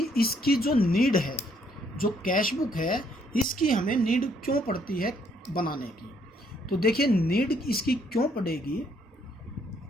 इसकी जो नीड है, जो कैश बुक है, इसकी हमें नीड क्यों पड़ती है बनाने की. तो देखिए, नीड इसकी क्यों पड़ेगी.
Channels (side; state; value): both; normal; correlation 0.68